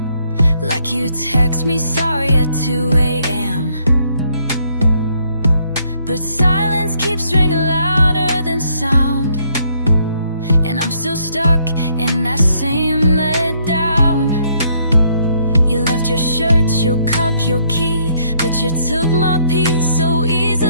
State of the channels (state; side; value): inverted; both; correlation -0.69